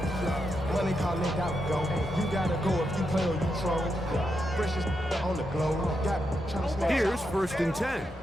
Money calling out go. You gotta go if you play or you troll. Freshest on the globe. Got trying to smash. Here's first and 10.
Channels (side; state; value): both; normal; correlation 0.84